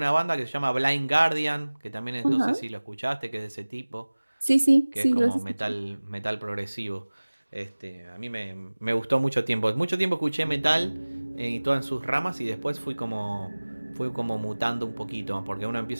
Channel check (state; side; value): inverted; both; correlation -1.00